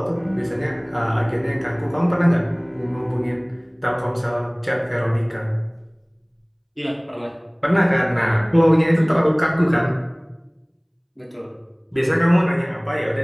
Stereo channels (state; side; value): identical; both; correlation 1.00